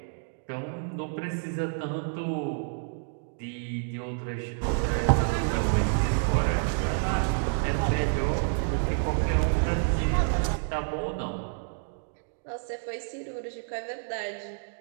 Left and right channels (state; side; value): silent; left; digital silence